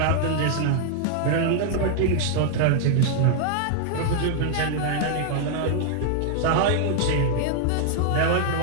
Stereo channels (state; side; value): different; both; correlation -0.01